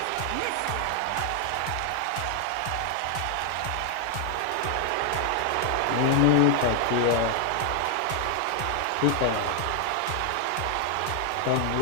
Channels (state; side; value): different; both; correlation 0.00